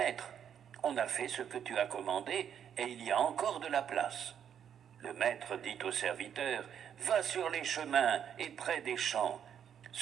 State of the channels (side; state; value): left; quieter; 8.7 dB